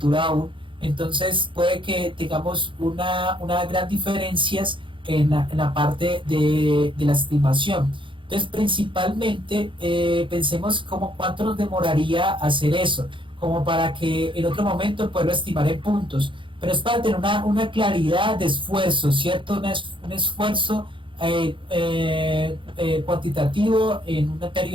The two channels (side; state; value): left; late; 0.24 ms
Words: aún, entonces puede que tengamos una gran diferencias en la parte de la estimación. Entonces, principalmente, pensemos como cuánto nos demoraría hacer eso, como para que en otro momento poderlo estimar en puntos, pero es para tener una claridad de esfuerzo, ¿cierto? Un esfuerzo cuantitativo en un